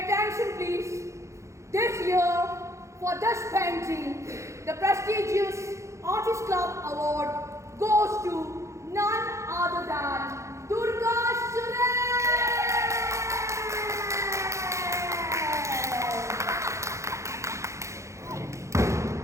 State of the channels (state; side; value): late; left; 0.14 ms